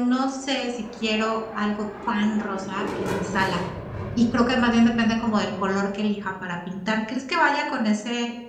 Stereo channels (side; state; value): both; identical; correlation 1.00